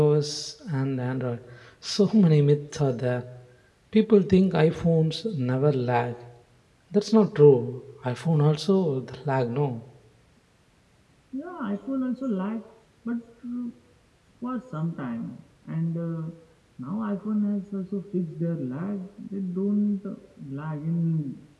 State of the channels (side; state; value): both; identical; correlation 1.00